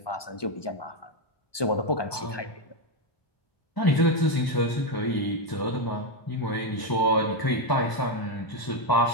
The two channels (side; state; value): right; late; 1.2 ms